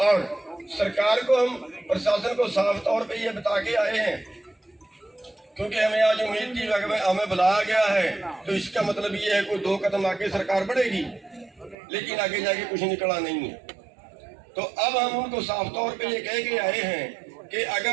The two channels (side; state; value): left; drops out; at 11.8 s